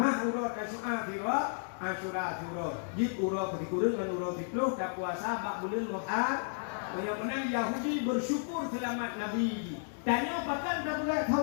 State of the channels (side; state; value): right; silent; digital silence